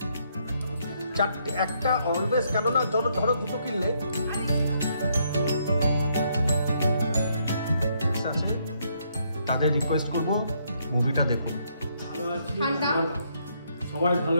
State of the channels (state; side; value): inverted; both; correlation -0.73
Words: চারটে, একটা অলওয়েজ, কেননা ধরো দুটো কিনলে তাদের রিকোয়েস্ট করব মুভিটা দেখুন। ভালো আছি, সবাই